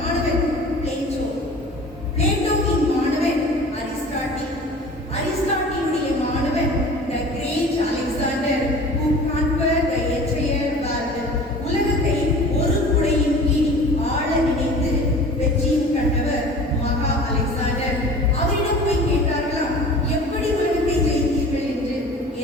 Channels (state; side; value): normal; both; correlation 0.42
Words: பிளேட்டோ, பிளேட்டோவின் மாணவன் அரிஸ்டாட்டில், அரிஸ்டாட்டிலுடைய மாணவன் the great Alexander who conquered the entire world. உலகத்தை ஒரு குடையின் கீழ் ஆள நினைத்து வெற்றியும் கண்டவர் மகா அலெக்சாண்டர். அவரிடம் போய் கேட்டார்களாம், எப்படி உலகத்தை ஜெயித்தீர்கள் என்று.